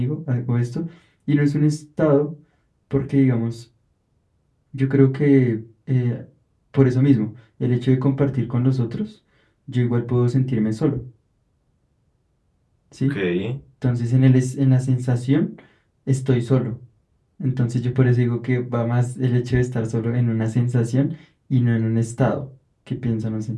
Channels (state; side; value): identical; both; correlation 1.00